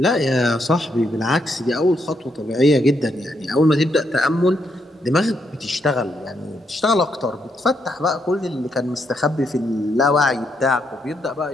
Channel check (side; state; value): both; normal; correlation 0.78